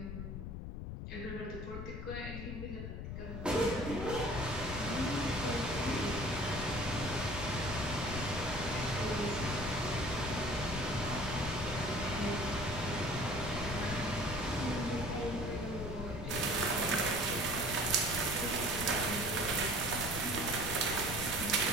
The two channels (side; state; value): left; noise; rumble, 6 dB below the sound